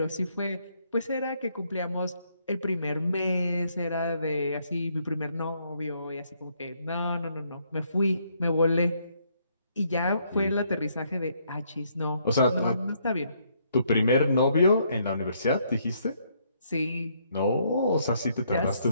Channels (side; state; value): both; inverted; correlation -0.71